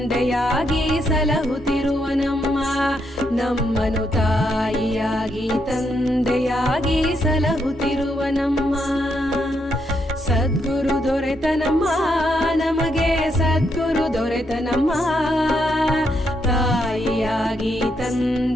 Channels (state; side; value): normal; both; correlation 0.78